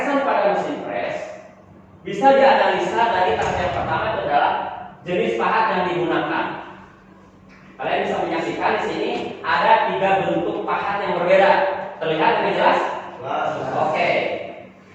pada mesin press bisa dianalisa dari tahap yang pertama itu adalah jenis pahat yang digunakan. Kalian bisa menyaksikan di sini ada 3 bentuk pahat yang berbeda. Terlihat dengan jelas? Oke.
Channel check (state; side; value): identical; both; correlation 1.00